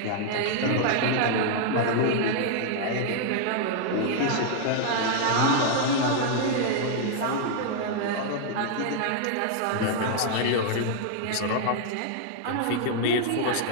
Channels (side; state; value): both; different; correlation -0.01